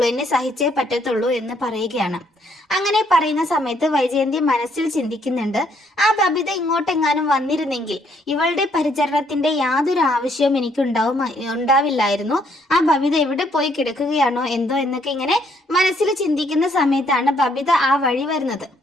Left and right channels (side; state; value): both; normal; correlation 0.69